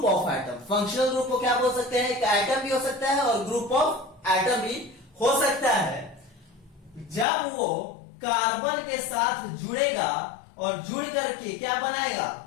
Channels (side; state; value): right; drops out; at 7.2 s